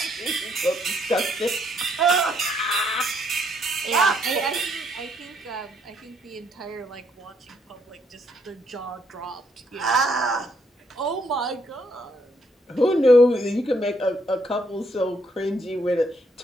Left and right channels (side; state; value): both; normal; correlation 0.72